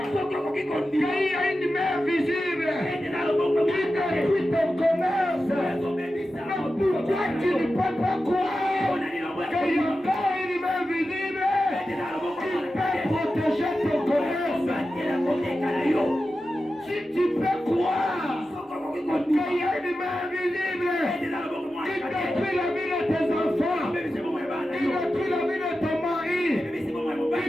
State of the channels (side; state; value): both; normal; correlation 0.92